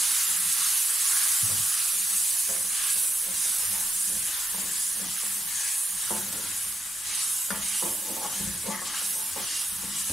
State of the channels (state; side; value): normal; both; correlation 0.87